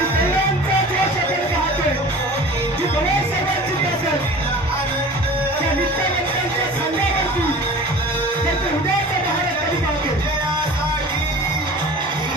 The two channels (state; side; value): normal; both; correlation 0.40